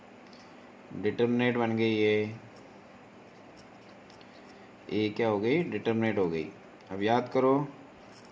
डिटर्मिनेंट बन गई है, ए क्या हो गई, डिटर्मिनेंट हो गई। अब याद करो,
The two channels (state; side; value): identical; both; correlation 1.00